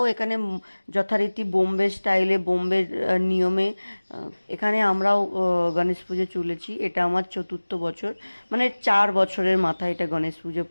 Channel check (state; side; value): inverted; both; correlation -1.00